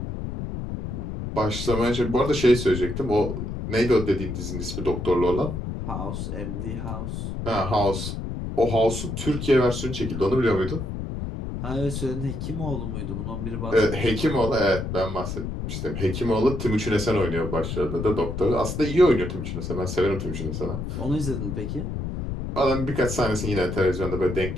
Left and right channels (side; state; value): left; noise; rumble, 5 dB below the sound